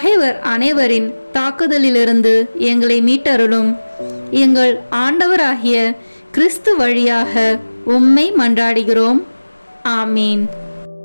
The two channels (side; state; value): both; inverted; correlation -1.00